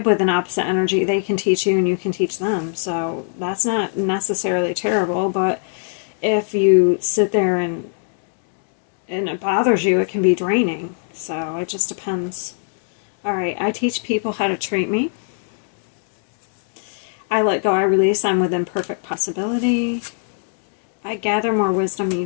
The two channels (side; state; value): right; silent; 65 dB below the other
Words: with an opposite energy, they can teach you and you can teach them. So that's not necessarily terrible, but if you sit there and it bothers you, it can be draining. So it just depends. All right, I teach people how to treat me. I let go, I release, I'm within perfect possibility. I gather more wisdom